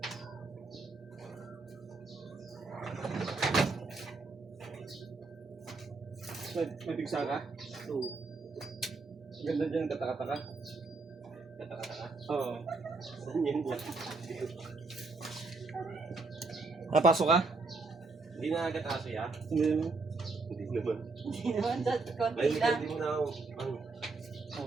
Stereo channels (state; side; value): quieter; left; 3.9 dB